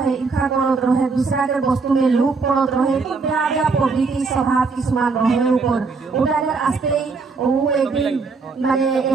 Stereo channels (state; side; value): quieter; left; 4.5 dB